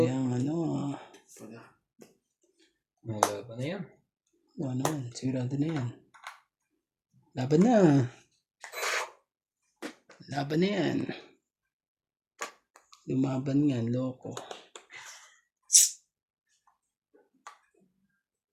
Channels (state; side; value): identical; both; correlation 1.00